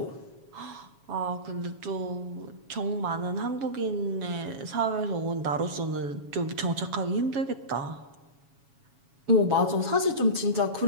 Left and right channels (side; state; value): left; late; 7.2 ms